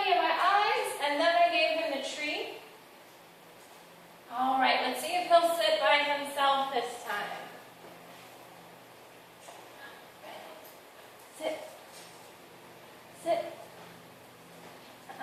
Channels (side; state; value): both; identical; correlation 1.00